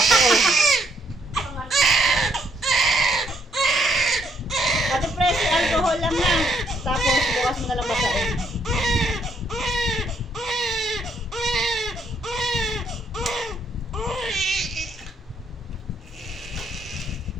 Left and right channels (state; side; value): normal; both; correlation 0.71